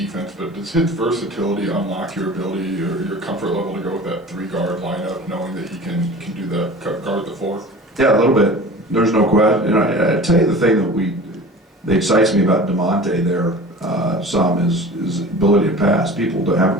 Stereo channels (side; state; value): both; normal; correlation 0.39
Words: but does his versatility unlock your ability or your comfort level to go with that 3-guard lineup, knowing that he can do that, guard the 4? Yeah, a little bit. There's no question. And I tell you the thing that excites me about DeMonte there some is his ability to pass. People haven't